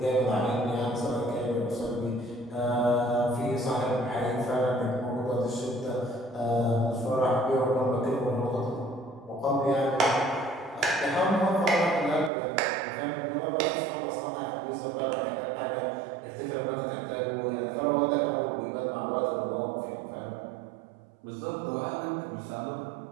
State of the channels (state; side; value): drops out; left; at 12.3 s